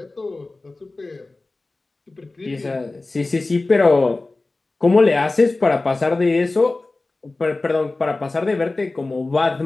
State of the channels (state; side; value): quieter; right; 3.2 dB